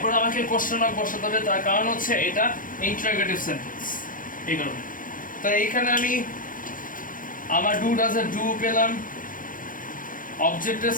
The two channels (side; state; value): right; late; 0.40 ms